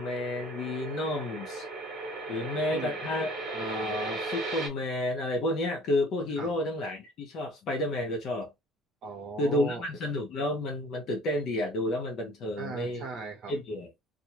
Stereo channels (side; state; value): both; normal; correlation 0.50